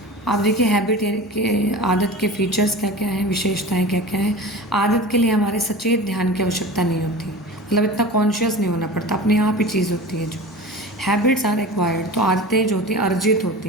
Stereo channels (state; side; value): normal; both; correlation 0.34